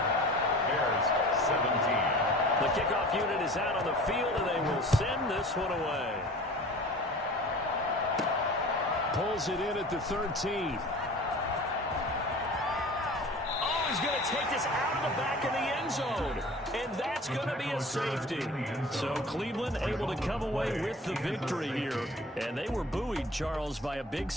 Bears 17. The kickoff unit is out on the field, and they will send this one away. Pulls it in at the 13. Oh, he's going to take this out of the back of the end zone. And that's going to be a safety. So Cleveland able to come away with the victory here. And they were buoyed, Charles, by a big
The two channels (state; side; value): normal; both; correlation 0.42